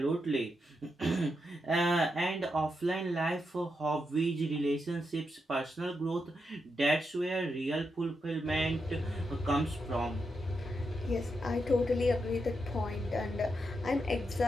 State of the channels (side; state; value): both; normal; correlation 0.84